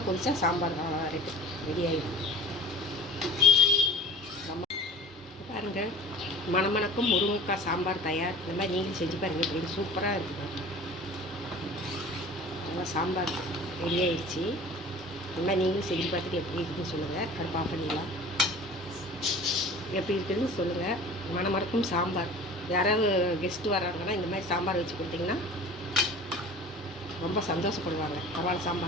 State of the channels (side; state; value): both; normal; correlation 0.43